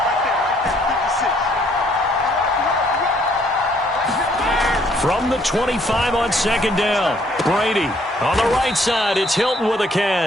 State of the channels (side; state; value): both; normal; correlation 0.65